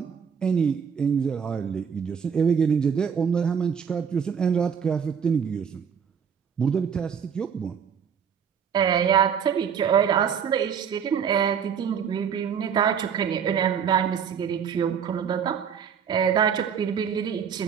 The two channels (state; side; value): quieter; left; 7.2 dB